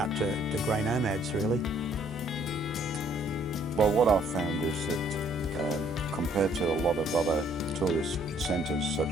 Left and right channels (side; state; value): both; normal; correlation 0.63